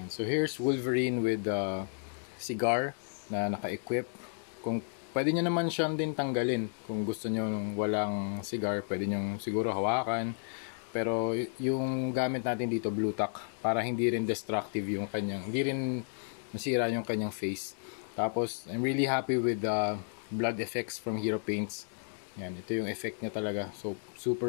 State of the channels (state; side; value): silent; right; digital silence